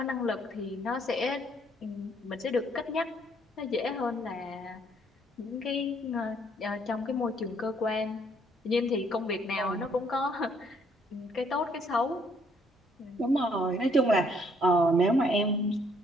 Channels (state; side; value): normal; both; correlation 0.66